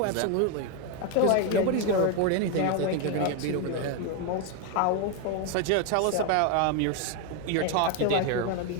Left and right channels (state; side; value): different; both; correlation 0.01